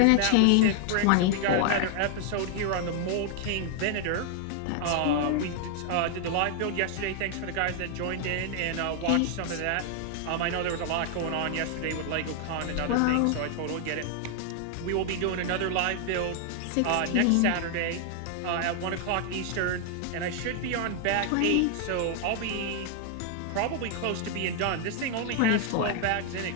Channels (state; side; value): different; both; correlation 0.00